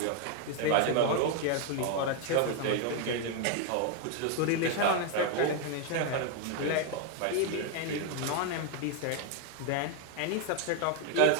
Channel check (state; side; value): different; both; correlation 0.01